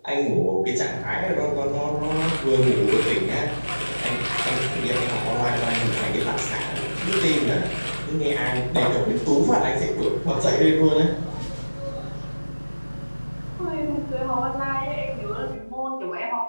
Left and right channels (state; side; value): inverted; both; correlation -1.00